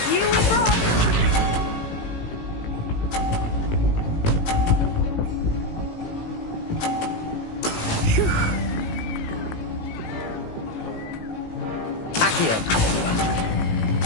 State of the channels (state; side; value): late; right; 18 ms